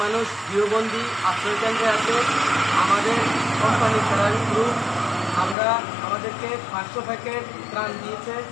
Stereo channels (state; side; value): drops out; right; at 5.6 s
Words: মানুষ গৃহবন্দী আশ্রয়কেন্দ্রে আছে। আমাদের কোম্পানি ফেরারি গ্রুপ আমাদেরকে 500 প্যাকেট ত্রাণ দিয়েছে।